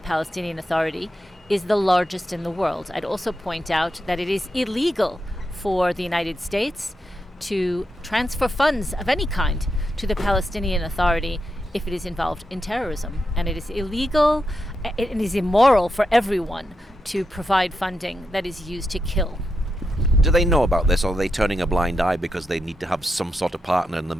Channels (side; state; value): both; normal; correlation 0.85